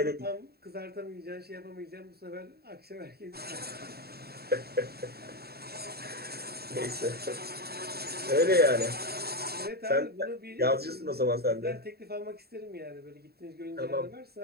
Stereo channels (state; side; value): late; left; 0.46 ms